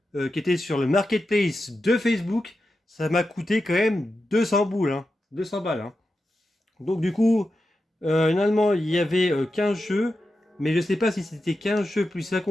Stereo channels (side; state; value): both; normal; correlation 0.90